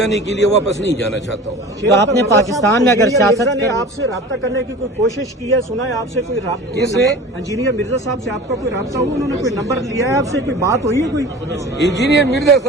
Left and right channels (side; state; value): both; normal; correlation 0.38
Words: کے لیے واپس نہیں جانا چاہتا ہوں. تو آپ نے پاکستان میں اگر سیاست نے آپ سے رابطہ کرنے کی کوئی کوشش کی ہے؟ سنا ہے آپ سے کوئی رابطہ؟ کس نے؟ انجینئر مرزا صاحب سے آپ کا کوئی رابطہ ہوا؟ انہوں نے کوئی نمبر لیا ہے آپ سے؟ کوئی بات ہوئی ہے کوئی؟ انجینئر مرزا